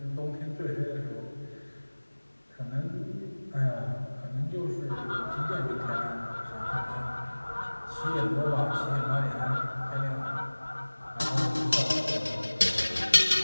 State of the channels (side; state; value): both; inverted; correlation -1.00